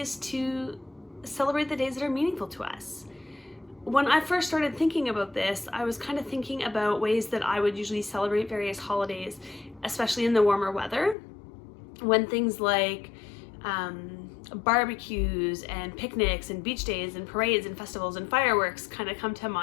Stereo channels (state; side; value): drops out; right; at 11.2 s